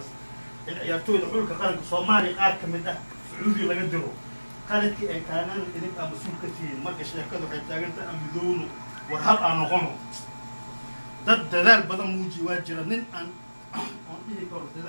in ciyaartooyda xulka qaranka Soomaaliya qaar ka mid ah Sacuudi laga diro qaladkii ay kaanaan idin ama suul ka tihiin marka sheekadu waxay taagantahay amidowno war hal aan noqono dad dadaal badan muuji waa jira nin aan dhihi karo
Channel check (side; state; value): both; inverted; correlation -1.00